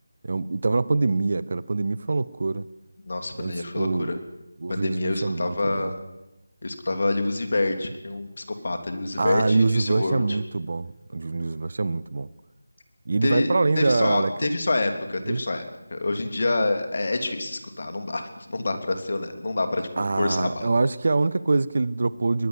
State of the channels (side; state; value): both; inverted; correlation -0.95